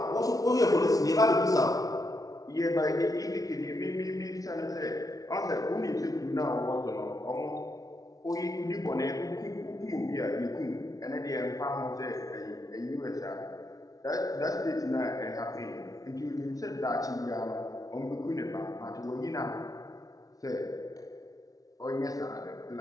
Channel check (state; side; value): late; right; 0.18 ms